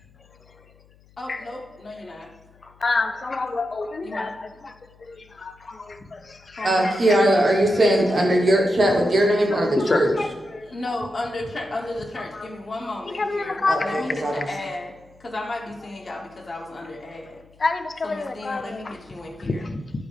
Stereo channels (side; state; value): left; noise; hum, 28 dB below the sound